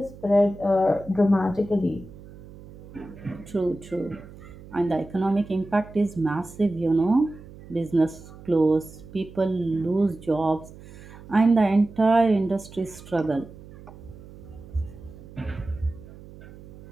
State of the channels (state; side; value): noise; right; hum, 18 dB below the sound